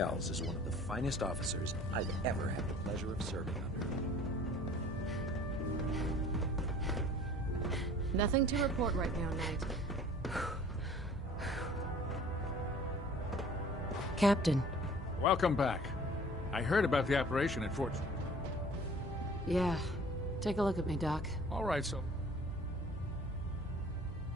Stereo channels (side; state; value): both; normal; correlation 0.49